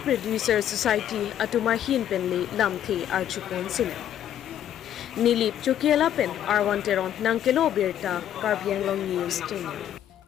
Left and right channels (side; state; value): right; quieter; 10.8 dB